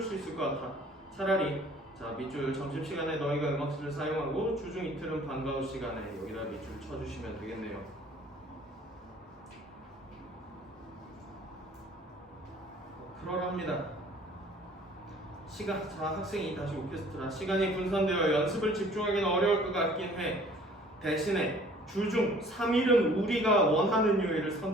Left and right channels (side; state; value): both; normal; correlation 0.53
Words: 있을 것 같아. 차라리 자 밑줄 점심시간에 너희가 음악실을 사용하고 주중 이틀은 방과 후 시간에 여기다 밑줄 쳐주시면 되겠네요. 그러랍니다. 자 학생이 다시 오케스트라 시간이 분산되어 연습을 집중하기는 어려울 것 같긴 해. 대신에 주중 3일은 우리가 원하는 요일을